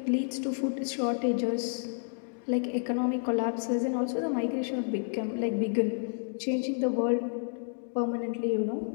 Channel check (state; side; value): silent; right; digital silence